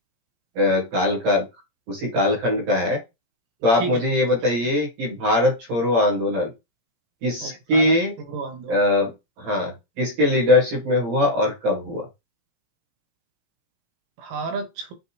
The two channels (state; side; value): late; left; 17 ms